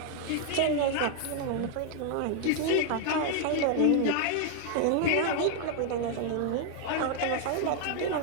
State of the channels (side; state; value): both; different; correlation 0.00